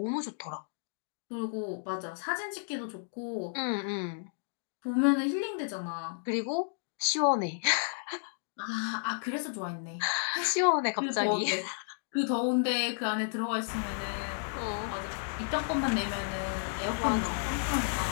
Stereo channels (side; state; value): right; silent; digital silence